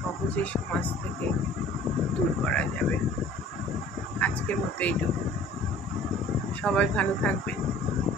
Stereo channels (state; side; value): normal; both; correlation 0.49